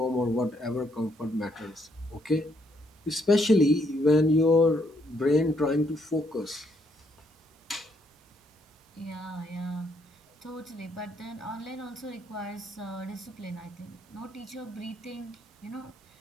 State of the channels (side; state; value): both; normal; correlation 0.72